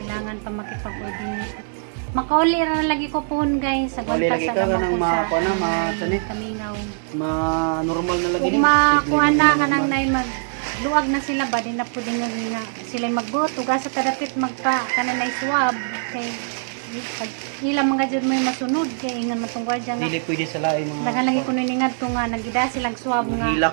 pa makipag-coordinate. Makauli ra lagi ko pohon guys sa Kauli gwanta lagi sa ka gamang kanang ko mga sa kuan na, mga sani? Kamingaw. normal na lagi Kung makuha na kanang nay magluag na sila ba din na pwede nga sila magbuot ug sa tadapit magpa kanang swab kay pag ilang mga jud may masunod kay ingon matong gwardiya nga dili pwede sa lain mga dagan lagi kuno ningad to nga nagida silang swab nga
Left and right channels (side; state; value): left; silent; 64 dB below the other